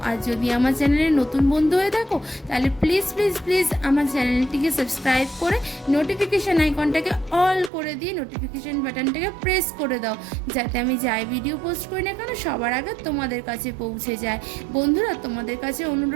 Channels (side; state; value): left; drops out; at 7.7 s